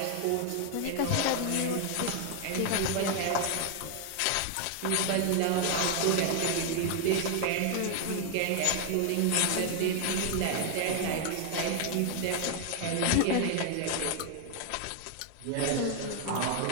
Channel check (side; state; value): both; different; correlation 0.01